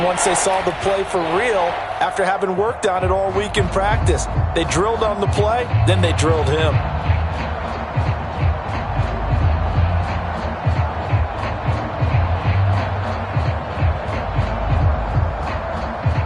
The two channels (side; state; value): both; identical; correlation 1.00